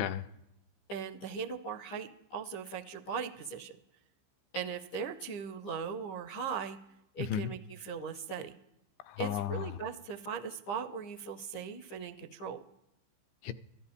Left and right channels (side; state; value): right; late; 15 ms